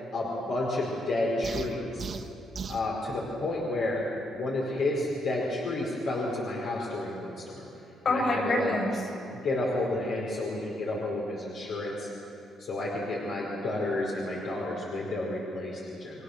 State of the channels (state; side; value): normal; both; correlation 0.76